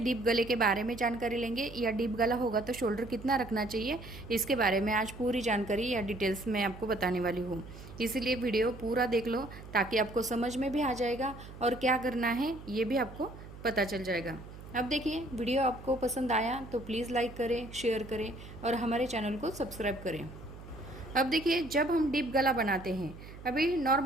गले के बारे में जानकारी लेंगे, या डीप गला होगा तो शोल्डर कितना रखना चाहिए, इसके बारे में आज पूरी जानकारी या डिटेल्स में आपको बताने वाली हूँ। इसीलिए वीडियो पूरा देख लो ताकि आपको समझ में भी आ जाएगा और क्या करना है ये भी आपको पता चल जाएगा। अब देखिए, वीडियो आपको पसंद आया तो प्लीज़ लाइक करें, शेयर करें और हमारे चैनल को सब्सक्राइब करें। अब देखिए, जब हम डीप गला बनाते हैं, अभी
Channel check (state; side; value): noise; right; hum, 15 dB below the sound